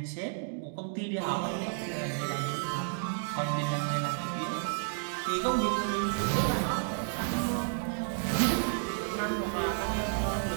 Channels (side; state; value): left; silent; digital silence